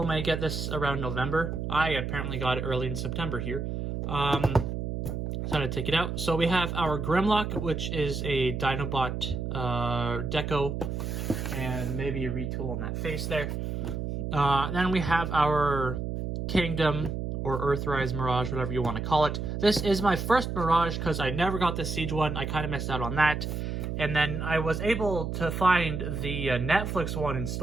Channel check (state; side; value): noise; right; hum, 3 dB below the sound